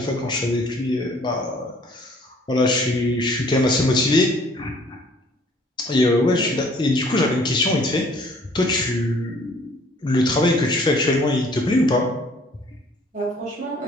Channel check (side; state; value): both; normal; correlation 0.57